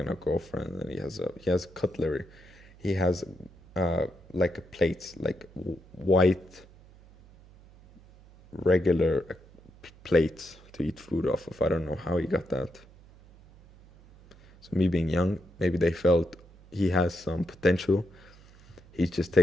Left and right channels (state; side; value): noise; right; hum, 24 dB below the sound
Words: and a girlfriend, and he has cutlery. He has like plates, like white regular plates to eat food off of. I don't know how he got that. So me being young, maybe they felt he has some potential. He's just